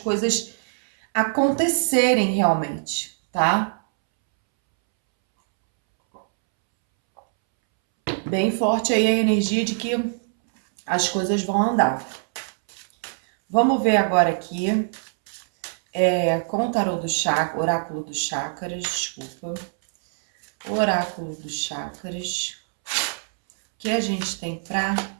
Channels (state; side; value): silent; left; 63 dB below the other